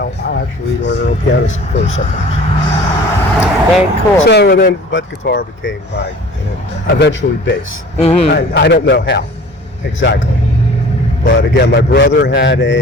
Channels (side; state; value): both; normal; correlation 0.45